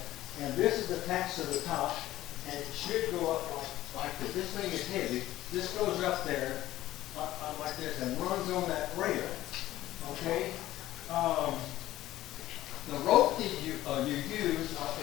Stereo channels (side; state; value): right; quieter; 15.0 dB